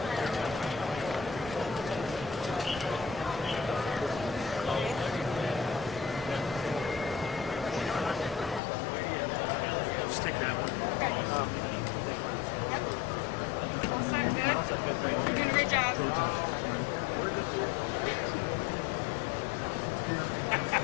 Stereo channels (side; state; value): right; drops out; at 8.6 s